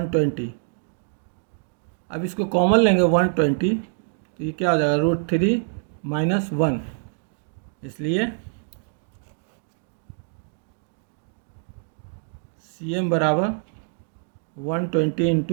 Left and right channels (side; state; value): left; silent; digital silence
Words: अब इसको कॉमन लेंगे 120, तो ये क्या हो जाएगा, √3 माइनस 1, इसलिए सी एम बराबर 120